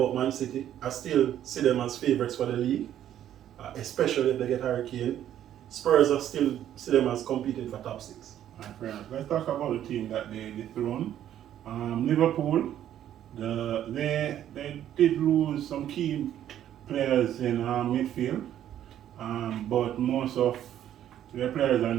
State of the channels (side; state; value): left; quieter; 11.1 dB